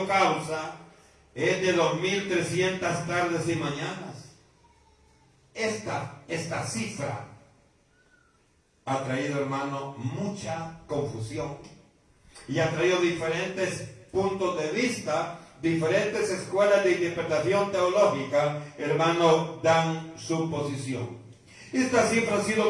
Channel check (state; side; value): identical; both; correlation 1.00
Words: causa? Es de 2300 tardes y mañanas. Esta cifra ha traído, hermano, mucha confusión y ha traído diferentes puntos de vista. Diferentes escuelas de interpretación teológica, hermano, dan su posición. Esta cifra ha sido